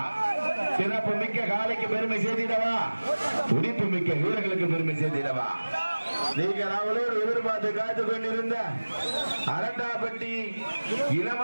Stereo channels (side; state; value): both; inverted; correlation -1.00